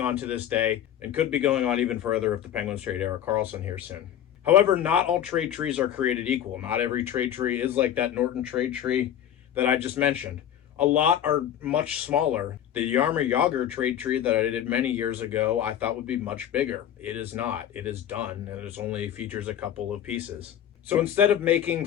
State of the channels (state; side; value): quieter; right; 10.4 dB